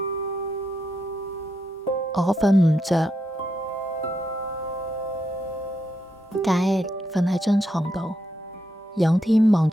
我瞓唔着，佳兒瞓喺張床度，仰天望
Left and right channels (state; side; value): normal; both; correlation 0.81